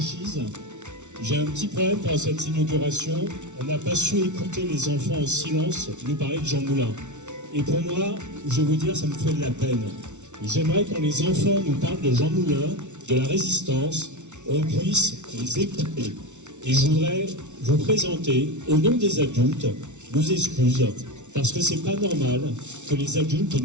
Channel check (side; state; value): left; late; 0.84 ms